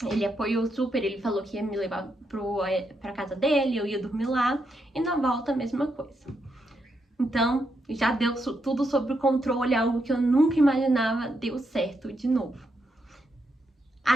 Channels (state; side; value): normal; both; correlation 0.81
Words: ele apoiou super, ele falou que ia me levar pra casa dele, eu ia dormir lá, e na volta a mesma coisa. Então, já deu tudo sob controle, algo que eu nunca imaginava, deu certo de novo.